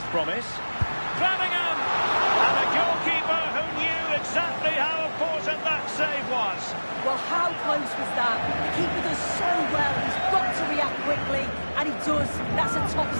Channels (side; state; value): both; inverted; correlation -1.00